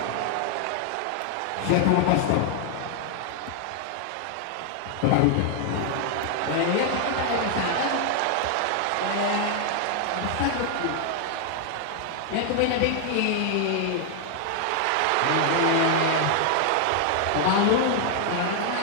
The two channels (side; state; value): both; different; correlation 0.00